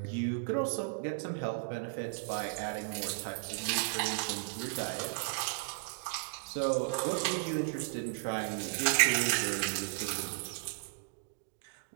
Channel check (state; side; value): silent; left; digital silence